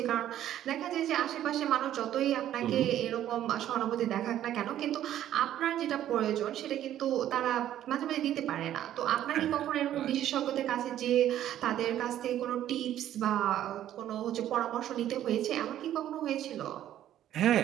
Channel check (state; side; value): quieter; left; 11.9 dB